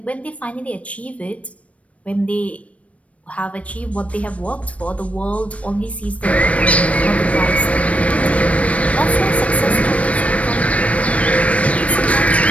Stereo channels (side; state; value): right; late; 0.065 ms